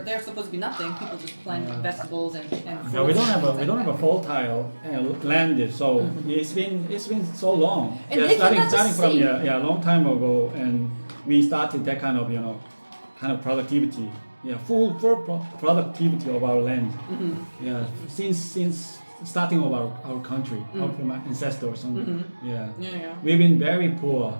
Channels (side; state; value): both; inverted; correlation -1.00